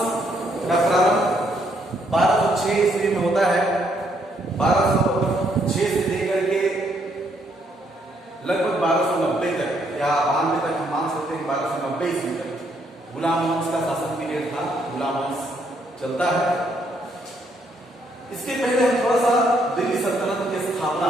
का प्रारंभ 1206 ईस्वी में होता है। 1206 से लेकर के लगभग 1290 तक या 92 तक हम मान सकते हैं। 1290 ईस्वी तक गुलाम वंश का शासन पीरियड था। गुलाम वंश चलता है। इसके पहले हम थोड़ा सा दिल्ली सल्तनत की स्थापना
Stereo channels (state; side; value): normal; both; correlation 0.72